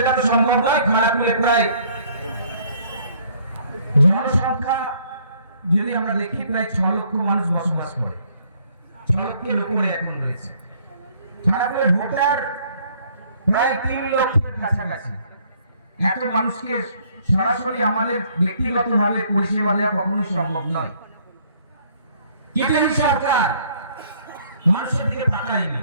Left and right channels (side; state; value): both; inverted; correlation -0.62